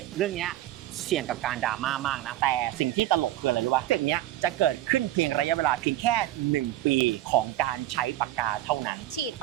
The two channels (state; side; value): quieter; left; 14.4 dB